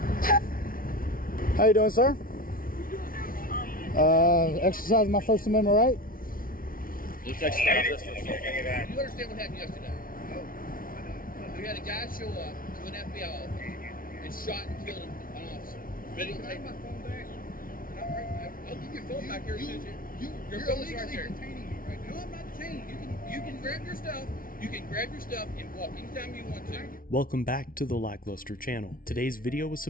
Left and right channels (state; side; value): late; right; 0.41 ms